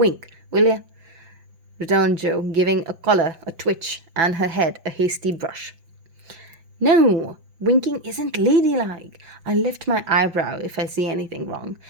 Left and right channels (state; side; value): late; left; 5.7 ms